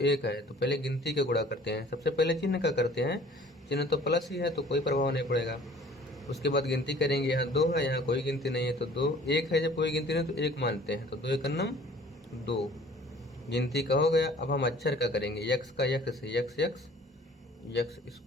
1 है, तो पहले गिनती का गुणा करते हैं। सबसे पहले चिन्ह का करते हैं, चिन्ह तो प्लस ही है तो कोई प्रभाव नहीं पड़ेगा। उसके बाद गिनती करेंगे, यहाँ 2 है, यहाँ कोई गिनती नहीं है तो 2, 1 है, जब कोई गिनती नहीं तो 1 मानते हैं, तो 2 1 नम 2, गिनती का हो गया। अब हम अक्षर का करेंगे, x का x से, x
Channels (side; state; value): both; normal; correlation 0.51